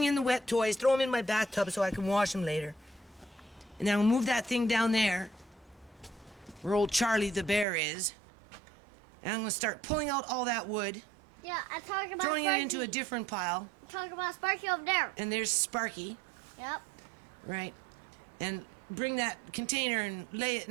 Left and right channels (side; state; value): left; drops out; at 7.7 s